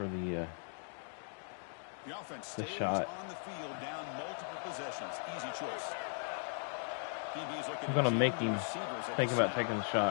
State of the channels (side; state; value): right; silent; 52 dB below the other